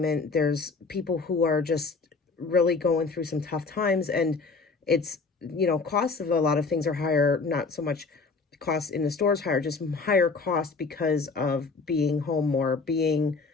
There's people who are just really going through some tough times, and it's, costs of a lot of things are higher, not so much cost in the stores higher, just higher cost because of being home more, being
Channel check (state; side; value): quieter; right; 4.3 dB